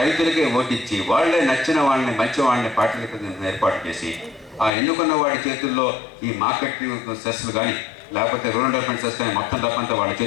ఓటిచ్చి, వాళ్లే నచ్చిన వాళ్ళని, మంచి వాళ్ళని పార్టీలకు ఏర్పాటు చేసి, ఆ ఎన్నుకున్న వాడి చేతుల్లో ఈ మార్కెట్ సెస్లు కానీ లేకపోతే రూరల్ డెవలప్మెంట్ సెస్ కానీ మొత్తం డబ్బంతా వాళ్ళ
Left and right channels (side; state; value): right; drops out; at 4.7 s